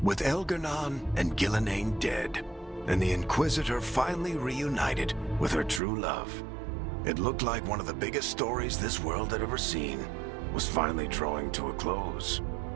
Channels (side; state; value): left; drops out; at 5.8 s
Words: With Elgar'nan and Gillenane dead, and the Inquisitor finally reunited with her true love, it looked like one of the biggest stories this world had ever seen was finally drawing to a close.